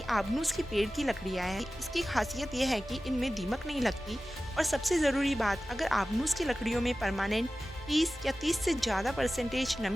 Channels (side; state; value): both; normal; correlation 0.95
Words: आबनूस की पेड़ की लकड़ियाँ हैं। इसकी खासियत यह है कि इनमें दीमक नहीं लगती, और सबसे ज़रूरी बात, अगर आबनूस की लकड़ियों में परमानेंट 20 या 30 से ज़्यादा परसेंटेज